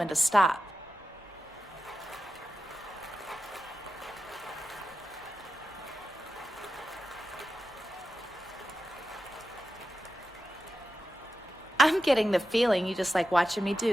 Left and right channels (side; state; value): both; normal; correlation 0.91